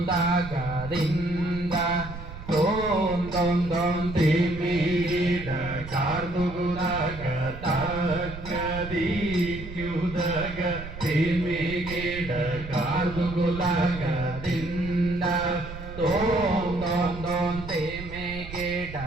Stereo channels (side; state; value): right; noise; rumble, 11 dB below the sound